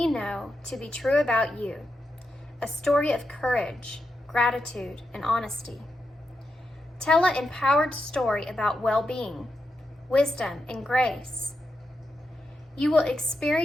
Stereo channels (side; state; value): both; normal; correlation 0.86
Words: know to be true about you, a story of courage, gratitude, and honesty. Tell an empowered story about well-being, wisdom, and grace. You will